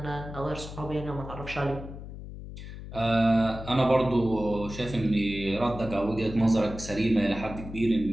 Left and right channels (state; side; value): noise; left; hum, 11 dB below the sound